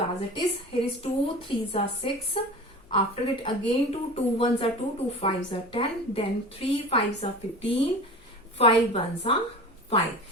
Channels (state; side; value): normal; both; correlation 0.35